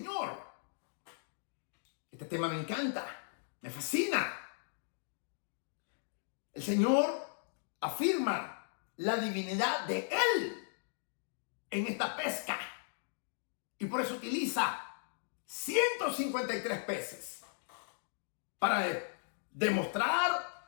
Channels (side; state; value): right; silent; digital silence